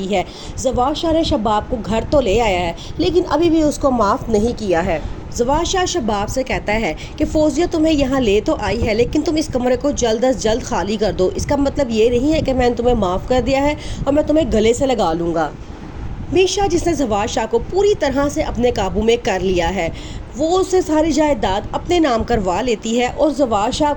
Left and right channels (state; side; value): identical; both; correlation 1.00